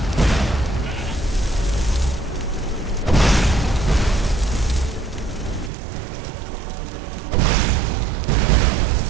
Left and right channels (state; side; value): drops out; left; at 5.7 s